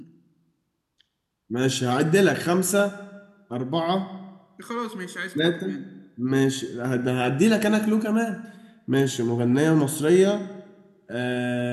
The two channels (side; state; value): both; identical; correlation 1.00